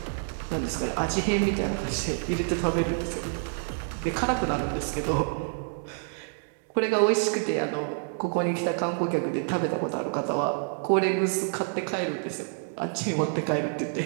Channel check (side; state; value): left; silent; 59 dB below the other